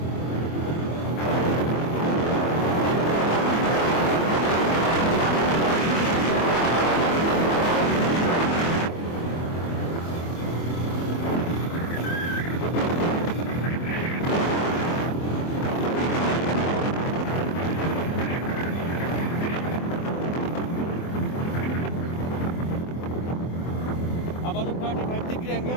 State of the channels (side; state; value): right; late; 24 ms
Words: আবারও 35 ডিগ্রি